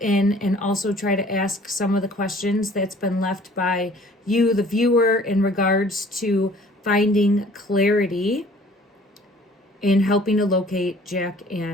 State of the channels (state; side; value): normal; both; correlation 0.52